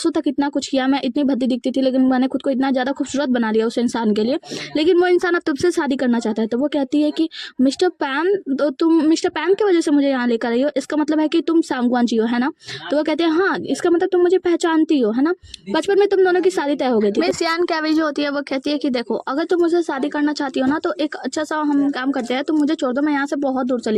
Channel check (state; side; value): identical; both; correlation 1.00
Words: तक इतना कुछ किया, मैं इतनी भद्दी दिखती थी लेकिन मैंने खुद को इतना ज़्यादा खूबसूरत बना लिया उस इंसान के लिए, लेकिन वो इंसान अब तुमसे शादी करना चाहता है। तो वो कहती है कि मिस्टर पैन की वजह से मुझे यहाँ लेकर आई हो, इसका मतलब है कि तुम सांगवान जी हो, है ना। तो वो कहते हैं हाँ इसका मतलब तुम मुझे पहचानती हो, है ना, बचपन में तुम दोनों की शादी तय हो गई थी। मिस यान कैवी जो होती है वो कहती है कि देखो अगर तुम मुझसे शादी करना चाहती हो ना तो एक अच्छा सा हम काम करते हैं, तुम मुझे छोड़ दो, मैं यहाँ से बहुत दूर